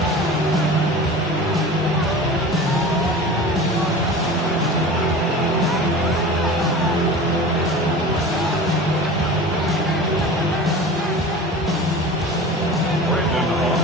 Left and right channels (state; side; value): normal; both; correlation 0.36